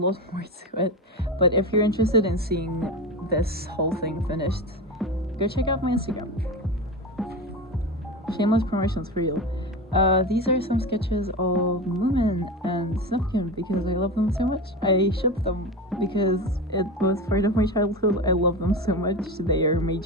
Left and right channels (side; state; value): both; normal; correlation 0.23